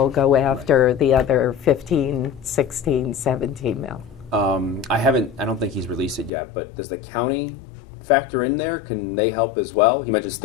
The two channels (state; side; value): drops out; right; at 6.3 s